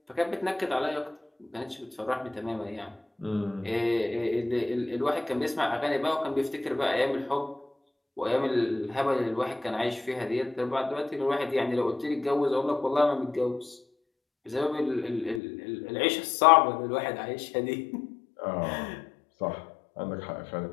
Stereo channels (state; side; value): drops out; right; at 15.4 s